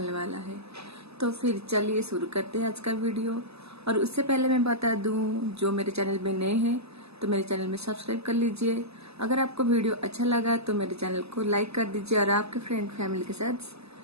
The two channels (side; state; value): left; late; 0.79 ms